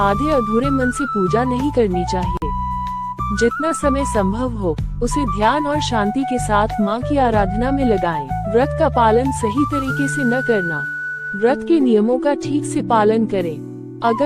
अधूरे मन से पूजा नहीं करनी चाहिए। जितना समय संभव हो उसे ध्यान और शांति के साथ माँ की आराधना में लगाएं। व्रत का पालन सही तरीके से न करना। व्रत के नियमों का ठीक से पालन करें।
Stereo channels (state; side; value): identical; both; correlation 1.00